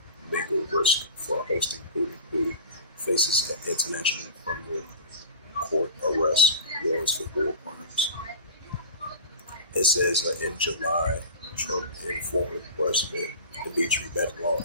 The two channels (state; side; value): inverted; both; correlation -0.35